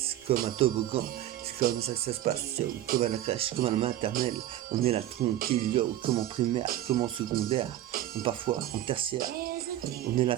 comme un toboggan. C'est comme ça que ça se passe, yo, comme à la crèche, comme à la maternelle. On est là tranquille, yo, comme en primaire, comme en secondaire, ou parfois en tertiaire. On est là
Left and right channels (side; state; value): left; quieter; 13.3 dB